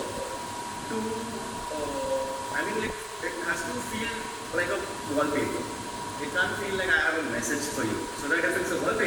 feel like I have a message for you. So that if it's a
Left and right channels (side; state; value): both; identical; correlation 1.00